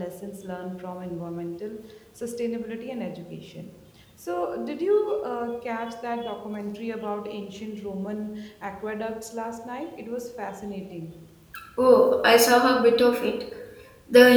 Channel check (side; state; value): both; identical; correlation 1.00